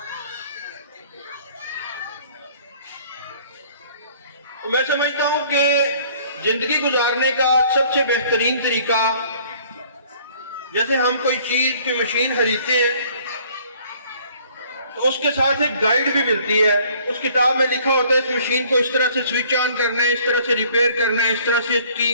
तो मैं समझता हूं कि जिंदगी गुजारने का सबसे बेहतरीन तरीका, जैसे हम कोई चीज की मशीन खरीदते हैं तो उसके साथ एक गाइड भी मिलती है। उस किताब में लिखा होता है इस मशीन को इस तरह से स्विच ऑन करना है, इस तरह से रिपेयर करना है, इस तरह से इसकी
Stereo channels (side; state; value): both; inverted; correlation -0.56